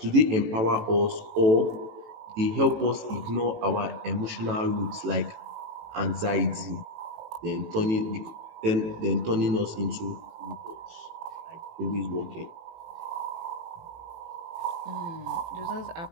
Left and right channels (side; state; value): left; late; 18 ms